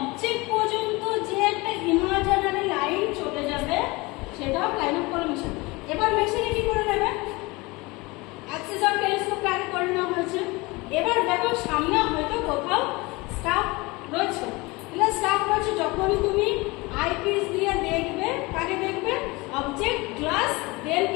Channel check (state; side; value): quieter; right; 23.8 dB